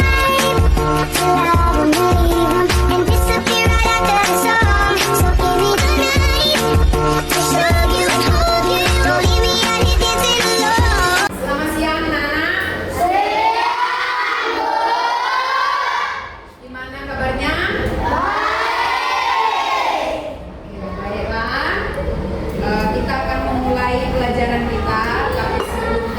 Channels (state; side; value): identical; both; correlation 1.00